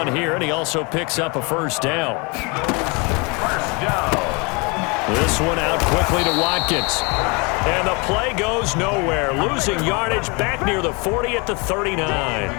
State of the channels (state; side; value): quieter; right; 29.6 dB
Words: here, and he also picks up a first down. First down. This one out quickly to Watkins. And the play goes nowhere, losing yardage back near the 40 at the